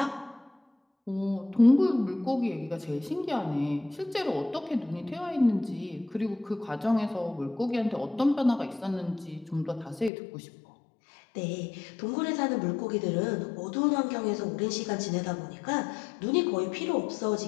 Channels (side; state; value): right; drops out; at 10.1 s